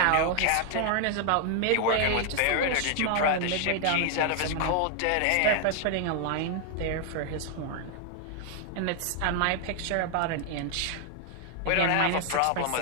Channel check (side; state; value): both; different; correlation 0.00